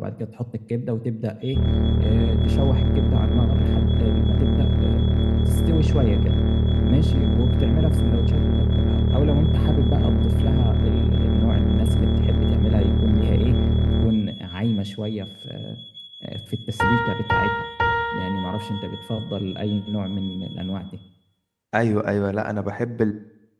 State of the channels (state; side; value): identical; both; correlation 1.00